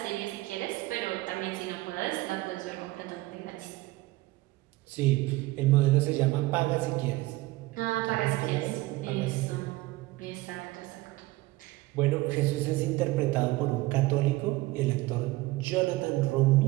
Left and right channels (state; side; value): quieter; left; 19.7 dB